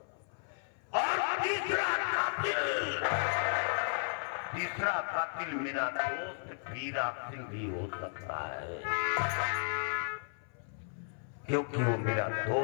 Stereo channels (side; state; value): right; silent; 55 dB below the other